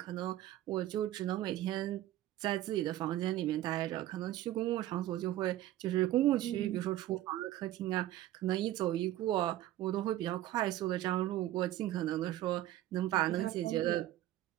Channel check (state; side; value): quieter; left; 14.2 dB